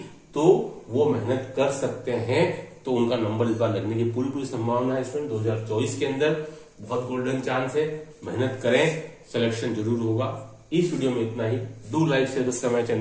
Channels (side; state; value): both; identical; correlation 1.00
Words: तो वो मेहनत कर सकते हैं, तो उनका नंबर इस बार लगने की पूरी संभावना है स्टूडेंट। 2024 के अंदर बहुत गोल्डन चांस है, मेहनत करें, सिलेक्शन जरूर होगा। इस वीडियो में इतना ही। Do like share subscribe my